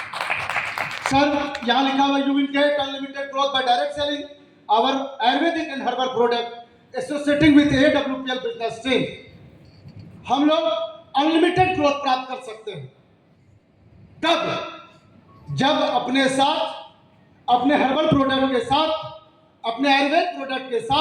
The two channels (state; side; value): identical; both; correlation 1.00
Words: सर, यहां लिखा हुआ you will get unlimited growth by direct selling our ayurvedic and herbal product associating with AWPL business stream. हम लोग अनलिमिटेड ग्रोथ प्राप्त कर सकते हैं कब? जब अपने साथ, अपने हर्बल प्रोडक्ट के साथ, अपने आयुर्वेद प्रोडक्ट के